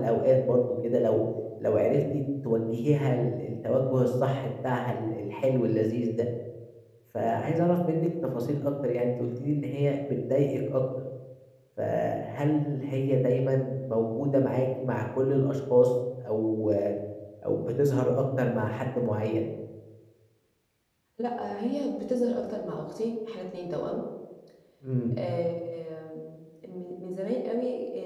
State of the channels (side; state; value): both; identical; correlation 1.00